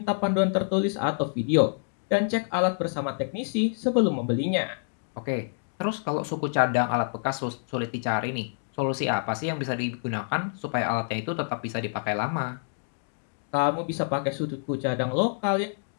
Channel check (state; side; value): silent; right; digital silence